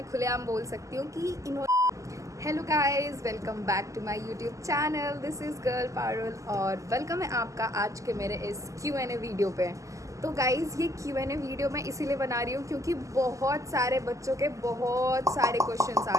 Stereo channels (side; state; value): left; late; 0.16 ms